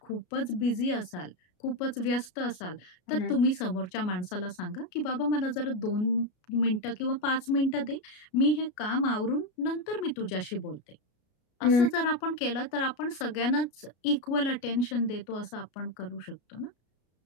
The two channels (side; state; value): right; late; 33 ms